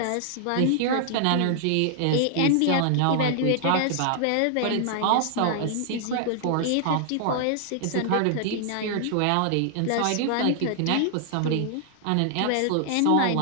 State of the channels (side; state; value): both; different; correlation 0.00